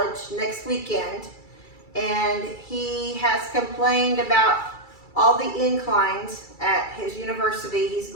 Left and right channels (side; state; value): right; late; 2.3 ms